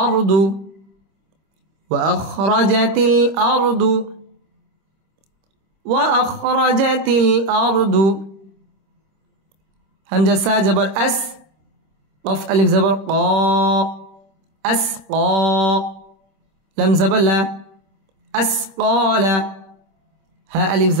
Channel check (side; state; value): left; late; 26 ms